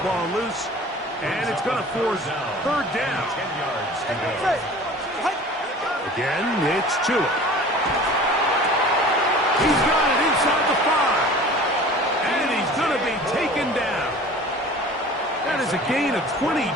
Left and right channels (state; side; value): normal; both; correlation 0.43